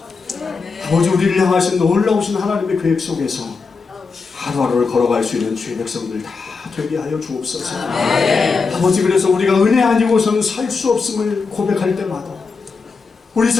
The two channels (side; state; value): right; quieter; 4.7 dB